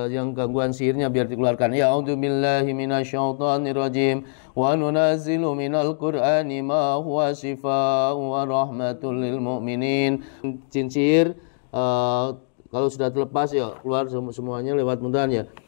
yang gangguan sihirnya biar dikeluarkan. Ya a'udzubillahi minasyaitonirrajim. Wa nunazzilu minal Qur'ani ma huwa shifaa'un wa rahmatul lil mu'minin. Jin sihir kalau sudah terlepas ya keluar semuanya lewat mudahan ya.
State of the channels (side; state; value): right; silent; digital silence